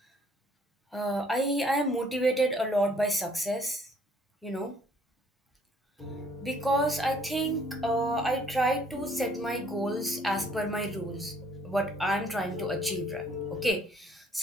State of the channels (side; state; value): both; normal; correlation 0.61